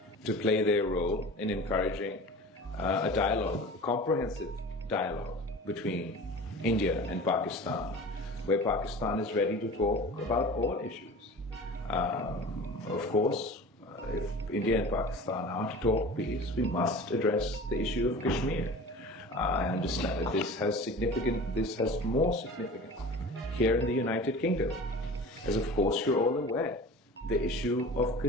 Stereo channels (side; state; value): both; normal; correlation 0.38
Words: to play their role in encouraging a dialogue, a comprehensive dialogue between India and Pakistan, where Pakistan is ready to talk about all issues. Of course, if India and Pakistan are to talk peace, we must address the issue of Kashmir. I understand that this has more significance here in the United Kingdom, as of course you're all aware. The issue of